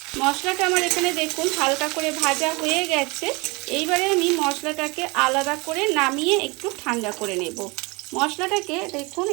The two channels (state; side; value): quieter; left; 26.6 dB